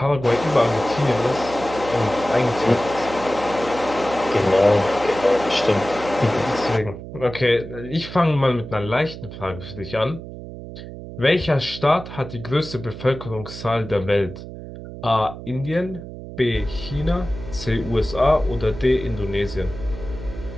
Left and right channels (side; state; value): right; noise; hum, 12 dB below the sound